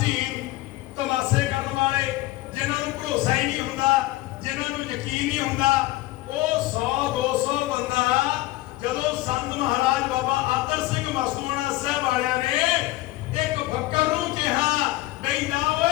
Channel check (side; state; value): right; quieter; 18.1 dB